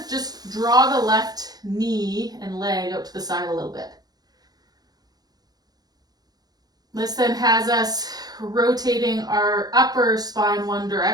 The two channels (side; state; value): left; late; 0.19 ms